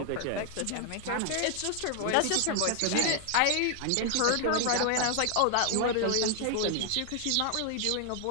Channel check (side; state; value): both; different; correlation 0.00